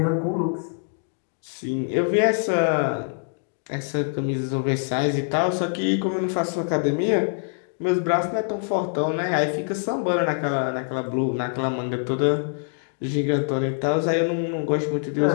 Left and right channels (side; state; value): right; silent; digital silence